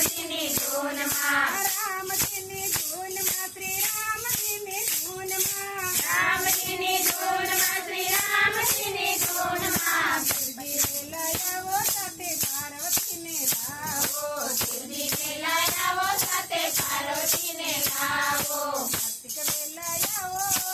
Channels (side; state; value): both; identical; correlation 1.00